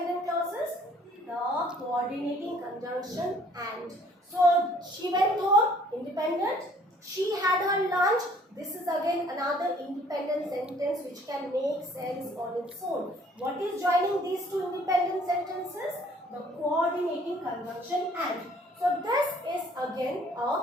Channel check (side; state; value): both; normal; correlation 0.58